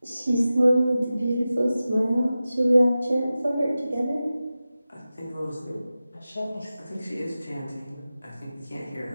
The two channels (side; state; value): both; inverted; correlation -0.95